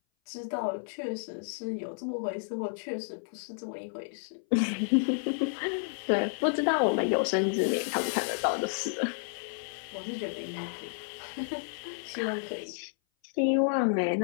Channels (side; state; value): right; silent; 57 dB below the other